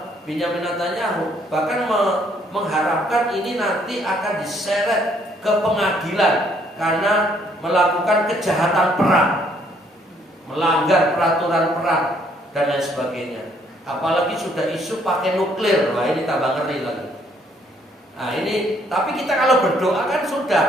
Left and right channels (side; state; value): both; normal; correlation 0.66